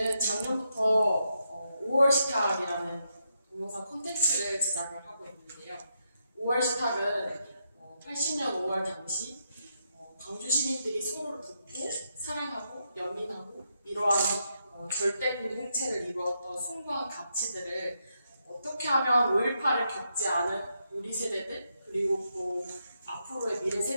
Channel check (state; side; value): inverted; both; correlation -0.81